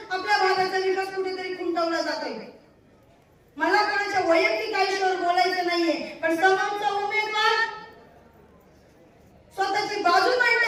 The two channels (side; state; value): both; identical; correlation 1.00